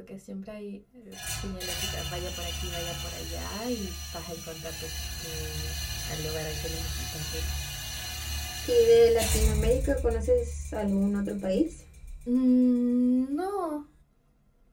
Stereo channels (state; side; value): identical; both; correlation 1.00